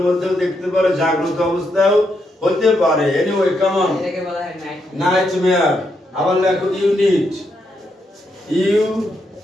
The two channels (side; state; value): both; normal; correlation 0.80